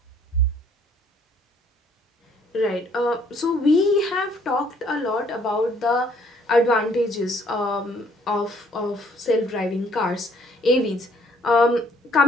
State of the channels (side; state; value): both; normal; correlation 0.63